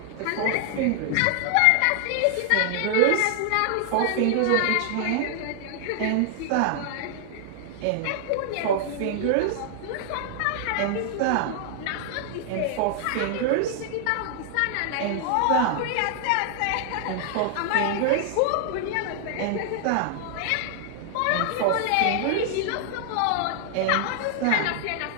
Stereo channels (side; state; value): both; different; correlation -0.01